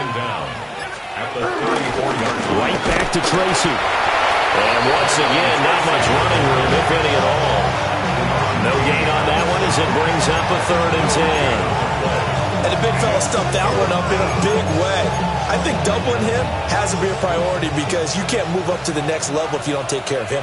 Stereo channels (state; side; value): identical; both; correlation 1.00